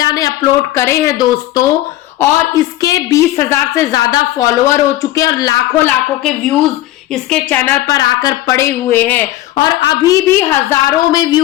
ने अपलोड करे हैं दोस्तों, और इसके 20,000 से ज्यादा फॉलोअर हो चुके हैं और लाखों लाखों के व्यूज इसके चैनल पर आकर पड़े हुए हैं और अभी भी हजारों में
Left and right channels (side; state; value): right; quieter; 15.4 dB